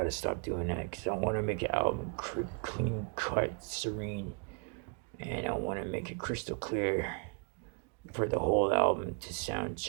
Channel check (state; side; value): quieter; left; 38.0 dB